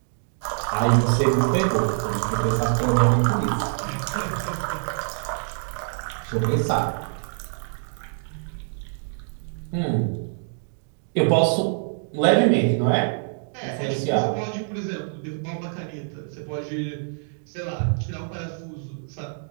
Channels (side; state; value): left; silent; digital silence